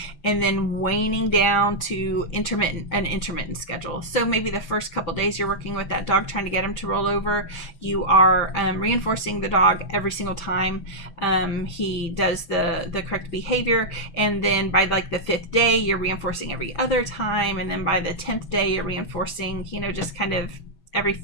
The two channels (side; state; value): right; late; 6.1 ms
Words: and then waning down to an intermittent schedule. So maybe the first couple days you're working with that dog, trying to get him to roll over, you are reinforcing the dog every single time he does the correct behavior, and then by like the 5th day you're reinforcing every other time, and then by the 10th day you're reinforcing, just kind of every